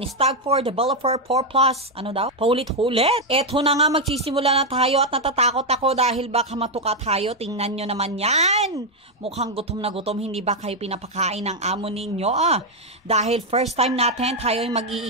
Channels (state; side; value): normal; both; correlation 0.02